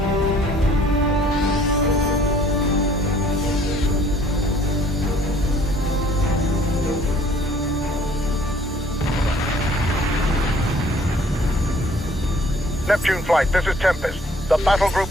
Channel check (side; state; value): both; normal; correlation 0.57